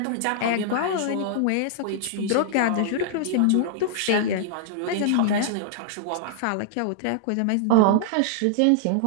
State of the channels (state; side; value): different; both; correlation -0.01